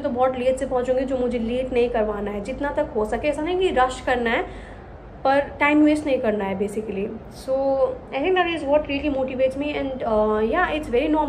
तो बहुत लेट से पहुँचूंगी, जो मुझे लेट नहीं करवाना है. जितना तक हो सके, ऐसा नहीं कि रश करना है, पर टाइम वेस्ट नहीं करना है basically. So I think that is what really motivates me. And yeah it's very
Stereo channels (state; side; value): identical; both; correlation 1.00